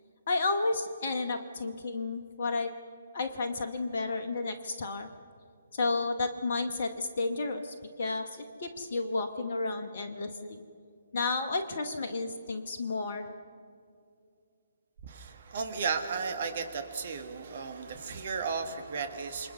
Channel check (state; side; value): inverted; both; correlation -0.76